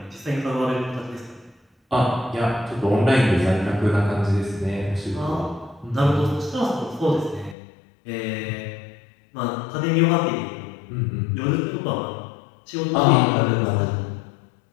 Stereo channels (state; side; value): drops out; right; at 7.6 s